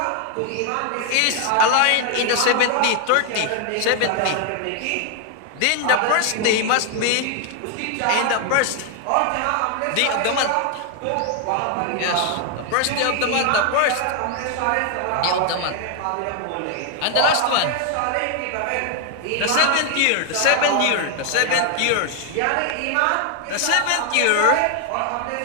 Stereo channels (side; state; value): both; different; correlation 0.00